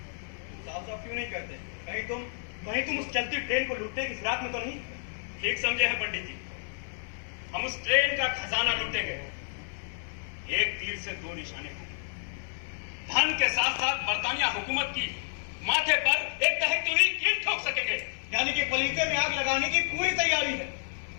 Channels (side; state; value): right; silent; 58 dB below the other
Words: साफ साफ क्यों नहीं करते? कहीं तुम उस चलती ट्रेन को लूटने की फिराक में तो नहीं? ठीक समझे हैं पंडित जी। हम उस ट्रेन का खजाना लूटेंगे। एक तीर से 2 निशाने होंगे। धन के साथ साथ बरतानिया हुकूमत की माथे पर एक दहकती हुई कील ठोक सकेंगे। यानी कि पलीते में आग लगाने की पूरी तैयारी है।